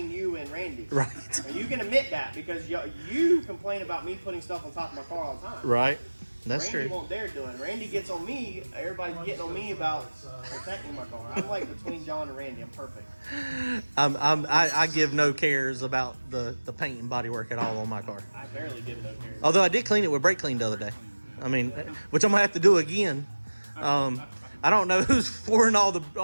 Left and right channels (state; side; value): inverted; both; correlation -1.00